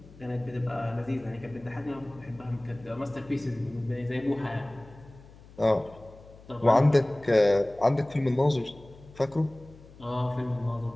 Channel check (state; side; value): noise; left; hum, 22 dB below the sound